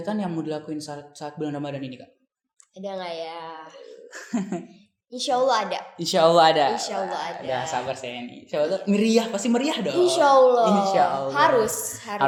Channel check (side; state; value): both; identical; correlation 1.00